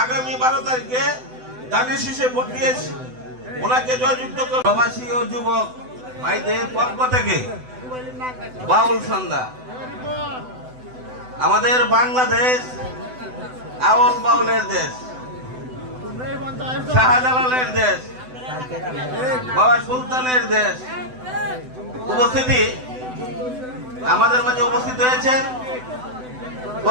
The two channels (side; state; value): left; late; 7.9 ms